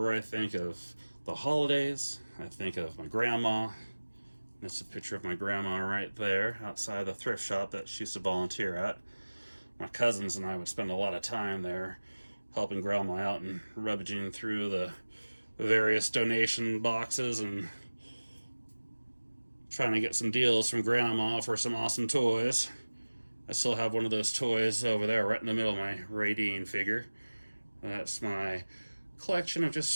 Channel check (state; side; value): inverted; both; correlation -1.00